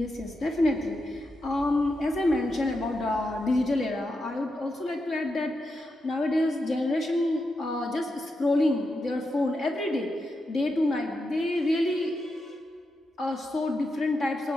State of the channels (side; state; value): both; normal; correlation 0.86